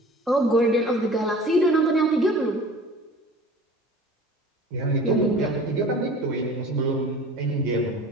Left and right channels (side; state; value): both; normal; correlation 0.43